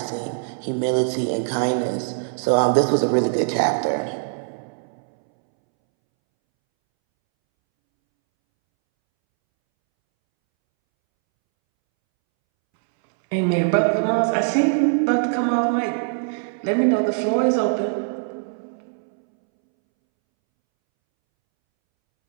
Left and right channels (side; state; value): left; silent; 64 dB below the other